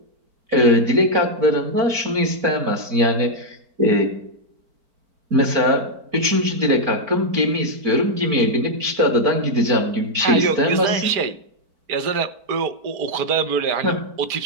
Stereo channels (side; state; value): left; late; 4.5 ms